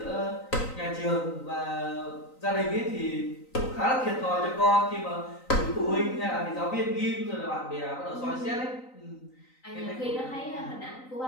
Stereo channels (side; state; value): right; late; 3.9 ms